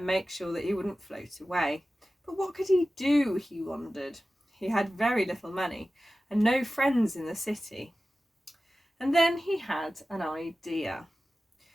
make sure that he wouldn't float away. But what could he do, he wondered. He had very little money and no friends in the city. And then he had an idea.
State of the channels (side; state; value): both; normal; correlation 0.95